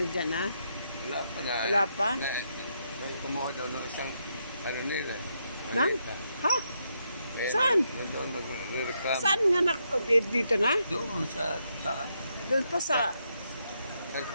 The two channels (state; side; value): inverted; both; correlation -0.79